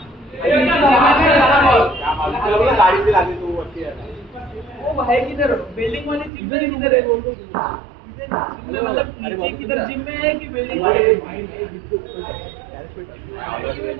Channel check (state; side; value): drops out; left; at 6.3 s